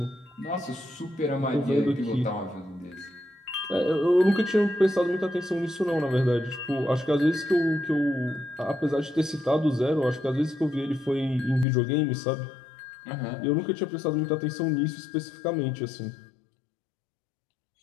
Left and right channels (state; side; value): drops out; right; at 11.7 s